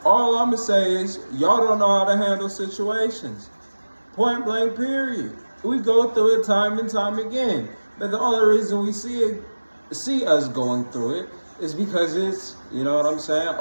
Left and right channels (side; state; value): both; inverted; correlation -1.00